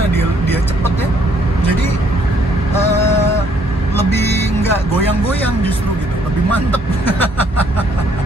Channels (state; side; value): normal; both; correlation 0.66